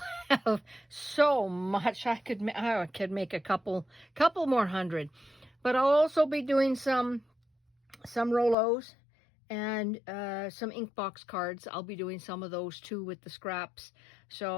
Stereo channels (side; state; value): right; drops out; at 8.6 s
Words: have so much. I could make a couple more hundred, but I'll also be doing some Rolos and some ink box cards. I'll be doing some of those too with the scraps.